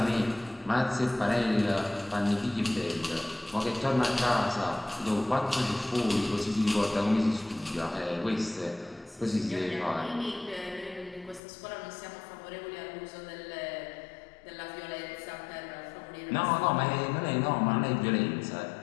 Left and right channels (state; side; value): drops out; right; at 11.4 s